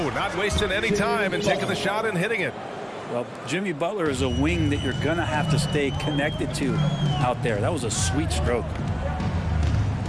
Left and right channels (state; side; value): identical; both; correlation 1.00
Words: not wasting any time and taking the shot and hitting it. Well, Jimmy Butler is a wing that you're going to have to stay connected to out there. That was a sweet stroke.